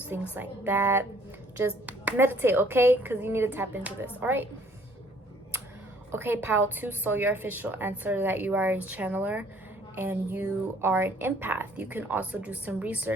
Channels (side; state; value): both; normal; correlation 0.60